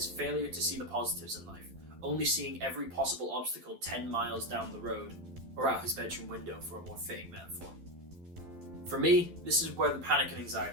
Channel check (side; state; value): left; late; 12 ms